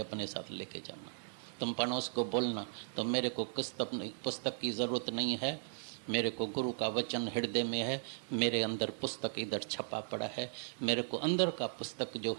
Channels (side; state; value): left; silent; 53 dB below the other